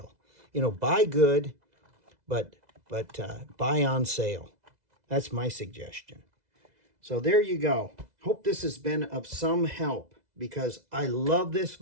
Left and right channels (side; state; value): left; late; 2.0 ms